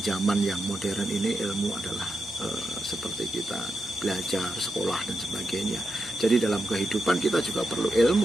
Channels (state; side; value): normal; both; correlation 0.86